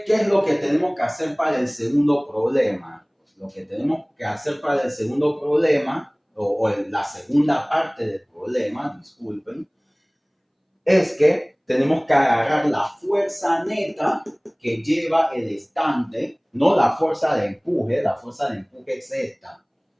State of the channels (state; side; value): identical; both; correlation 1.00